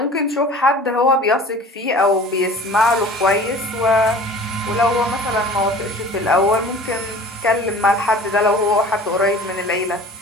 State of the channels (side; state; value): both; normal; correlation 0.43